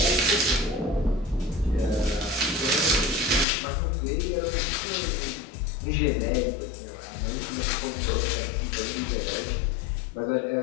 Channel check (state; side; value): drops out; right; at 3.5 s